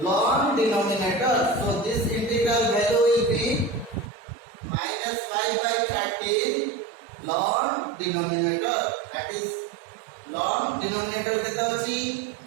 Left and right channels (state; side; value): drops out; left; at 4.1 s